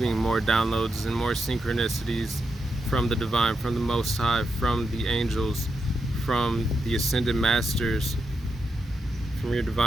more downloads and more synchronicities from the divine, from the Most High, from the angels, from the ascended masters, from your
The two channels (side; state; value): both; normal; correlation 0.85